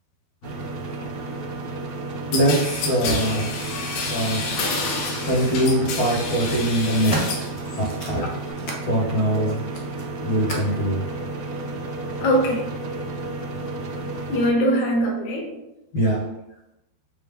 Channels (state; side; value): late; right; 12 ms